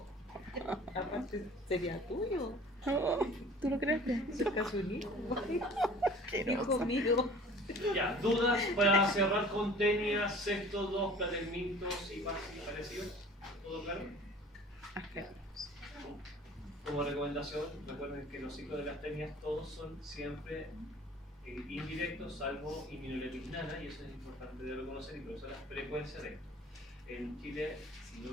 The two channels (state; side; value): normal; both; correlation 0.47